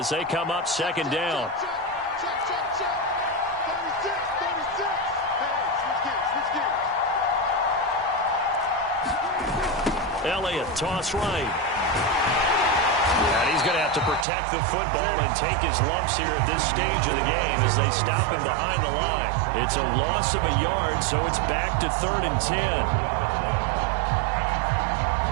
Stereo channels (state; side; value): drops out; left; at 14.2 s